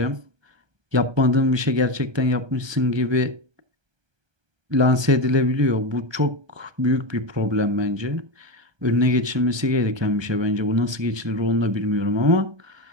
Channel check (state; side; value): late; left; 1.2 ms